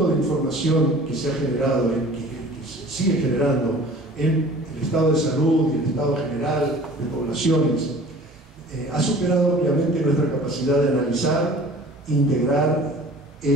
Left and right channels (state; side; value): normal; both; correlation 0.46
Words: de información que se ha generado, que se sigue generando en el estado de salud y el estado general de poblaciones, ha superado obviamente nuestra capacidad de analizar, integrar e